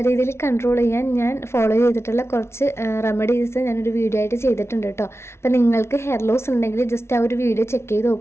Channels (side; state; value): right; late; 0.13 ms